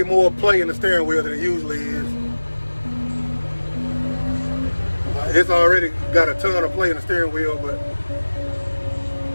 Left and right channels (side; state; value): both; inverted; correlation -1.00